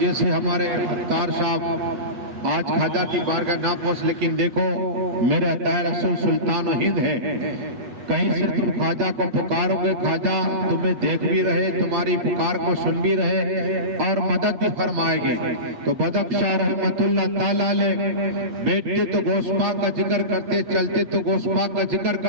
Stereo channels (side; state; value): left; late; 8.2 ms